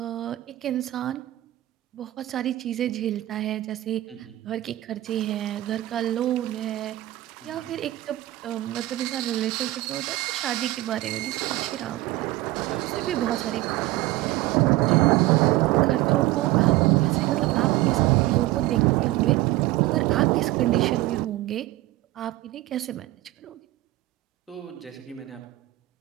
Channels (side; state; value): left; quieter; 16.9 dB